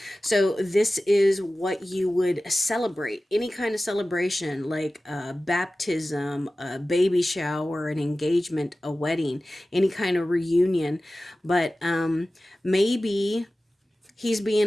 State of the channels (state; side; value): normal; both; correlation 0.96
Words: So this is what you would celebrate. Any kind of celebration, like a baptism, a baby shower, an engagement, a wedding, any kind of reunion. But maybe he's